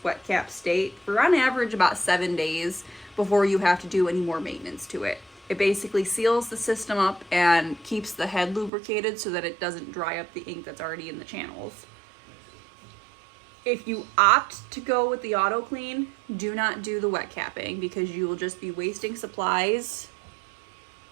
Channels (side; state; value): left; drops out; at 8.7 s